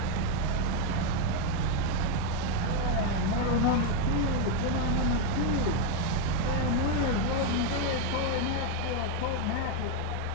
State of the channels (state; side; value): different; both; correlation 0.01